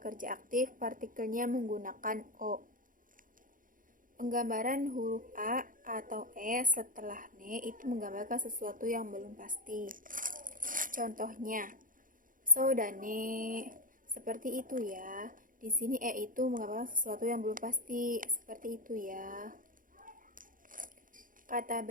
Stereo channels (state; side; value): late; left; 0.39 ms